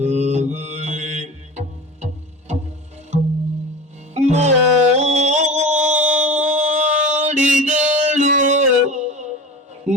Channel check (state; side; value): normal; both; correlation 0.32